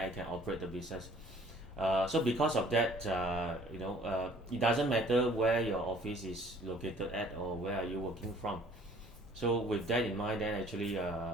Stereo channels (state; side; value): normal; both; correlation 0.55